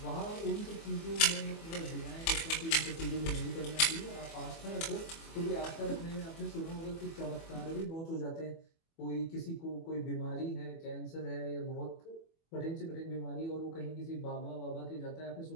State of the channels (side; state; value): right; late; 24 ms